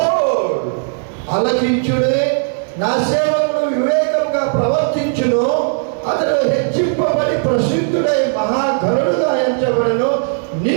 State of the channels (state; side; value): silent; left; digital silence